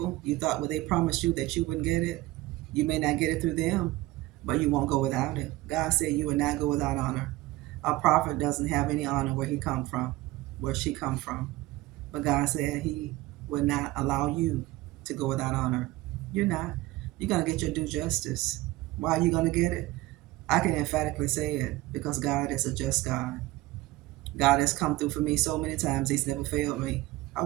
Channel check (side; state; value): left; quieter; 18.6 dB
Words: You thought when they promised you that you wouldn't get it, you may not get it through them, but you won't go without it. God said you would not go without honor. A prophet doesn't have any honor where he come from, where she come from. But God said he would not allow you to go without honor. You're not. You're going to get your due justice. Why are you going to get it? I can emphatically say it because God is a just God. God has come through for me so many times. He's never failed me. I